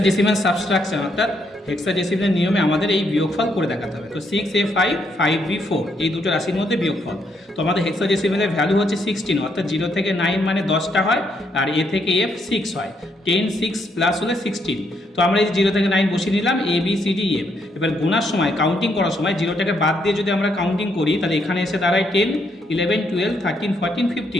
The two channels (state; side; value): normal; both; correlation 0.75